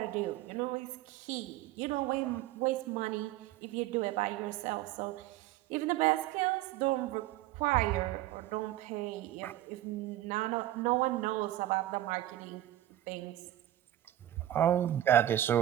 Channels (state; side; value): quieter; left; 13.8 dB